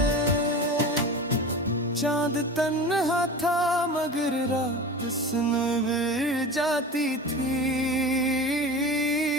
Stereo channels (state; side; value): normal; both; correlation 0.32